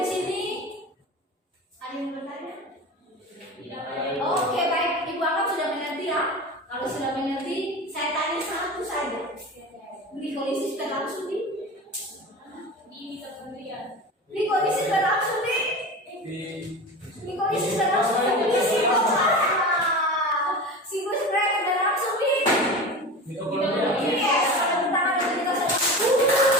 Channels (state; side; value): normal; both; correlation 0.30